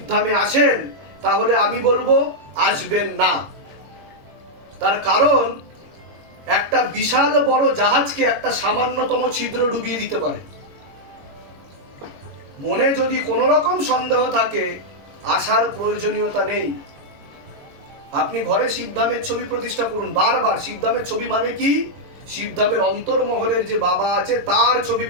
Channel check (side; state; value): left; late; 21 ms